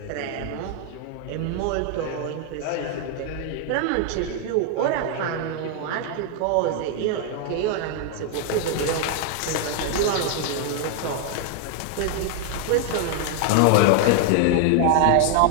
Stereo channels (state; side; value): different; both; correlation 0.00